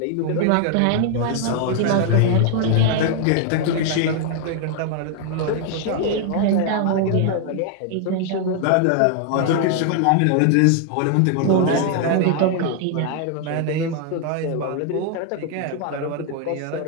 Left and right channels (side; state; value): both; different; correlation 0.00